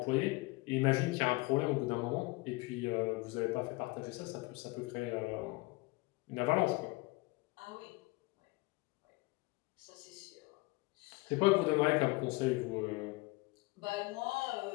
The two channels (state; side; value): quieter; right; 23.8 dB